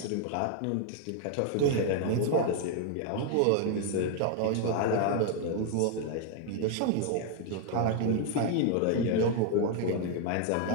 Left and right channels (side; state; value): both; different; correlation 0.00